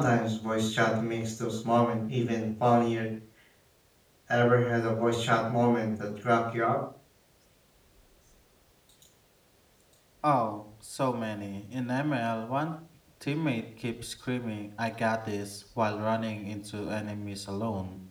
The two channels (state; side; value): identical; both; correlation 1.00